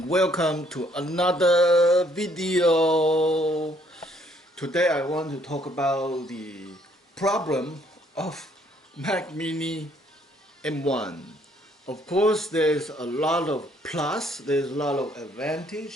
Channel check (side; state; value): both; normal; correlation 0.66